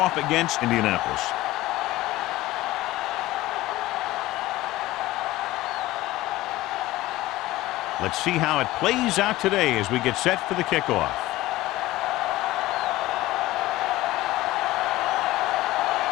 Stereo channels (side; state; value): right; quieter; 17.0 dB